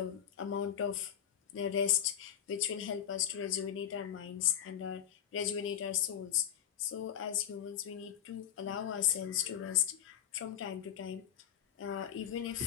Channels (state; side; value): quieter; right; 9.7 dB